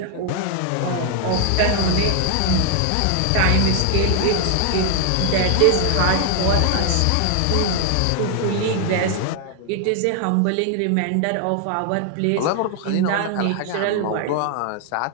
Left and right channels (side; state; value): both; different; correlation 0.00